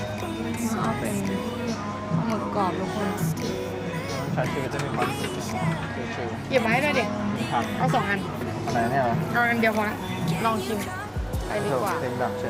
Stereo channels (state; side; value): identical; both; correlation 1.00